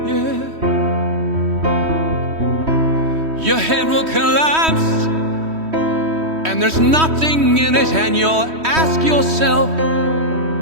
yeah. Your head will collapse and there's nothing in it, and you'll ask yourself,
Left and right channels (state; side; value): late; left; 3.1 ms